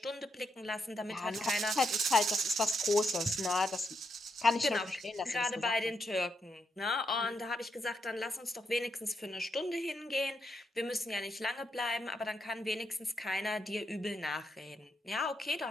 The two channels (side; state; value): both; normal; correlation 0.80